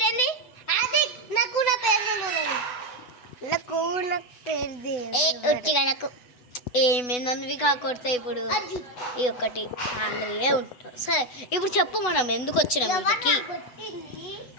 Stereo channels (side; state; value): right; late; 8.1 ms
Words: ఆది నాకు నా పేరు తెలియదు. నాకు ఒట్టిగా నాకు ఏమేందనివి కాకొడతాయి. ఇప్పుడు ఈ ఒక్కటి ఆంధ్రయే ఉంటాం. సరే ఇప్పుడు చెప్పు మనం ఎందుకు వచ్చినాం ఇంటికి?